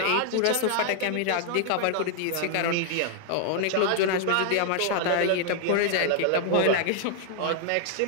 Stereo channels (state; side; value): different; both; correlation 0.00